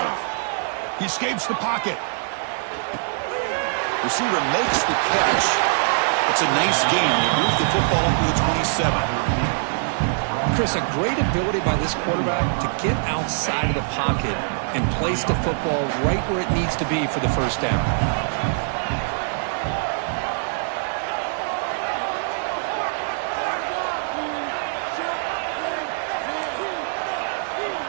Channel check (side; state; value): left; silent; 63 dB below the other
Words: He escapes the pocket. Receiver makes the catch. It's a nice game. He moves the football up to the 27. Chris, a great ability by this quarterback to get outside of the pocket and place the football right where it needs to be for the first down.